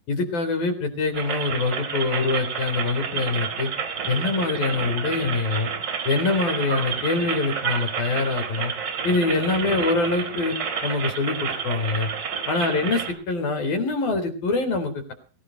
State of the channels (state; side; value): late; right; 12 ms